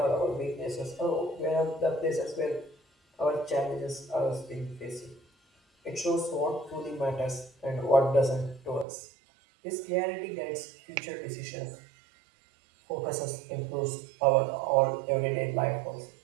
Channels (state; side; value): drops out; left; at 8.8 s